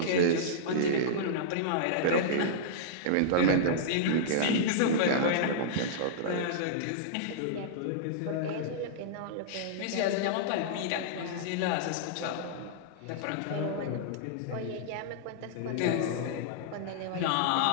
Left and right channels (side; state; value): both; different; correlation -0.03